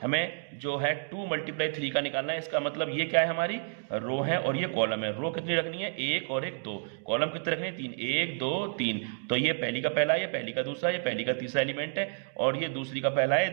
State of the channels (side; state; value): left; silent; digital silence